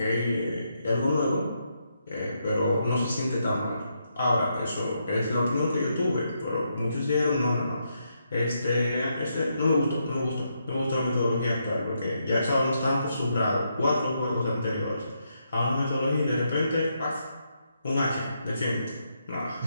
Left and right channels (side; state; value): both; inverted; correlation -0.80